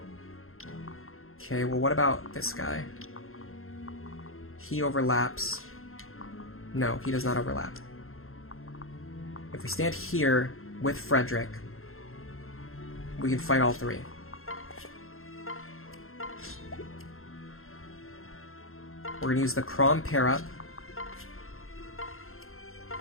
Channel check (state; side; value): late; right; 0.61 ms